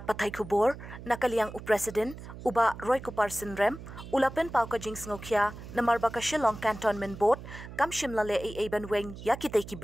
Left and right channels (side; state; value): right; noise; hum, 13 dB below the sound